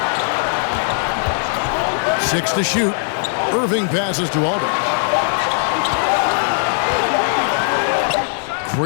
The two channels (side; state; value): right; silent; 67 dB below the other